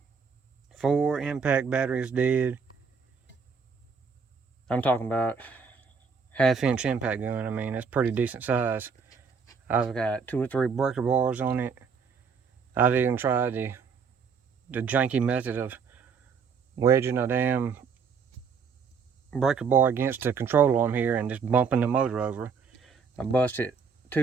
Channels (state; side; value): quieter; left; 5.8 dB